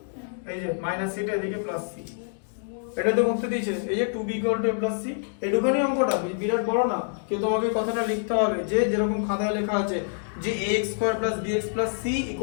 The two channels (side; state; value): right; silent; digital silence